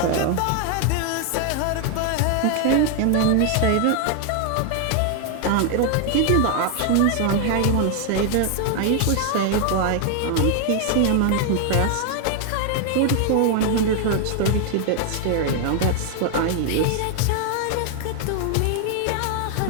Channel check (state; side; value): different; both; correlation 0.00